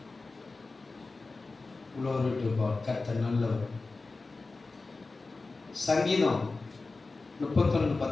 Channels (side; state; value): right; quieter; 3.7 dB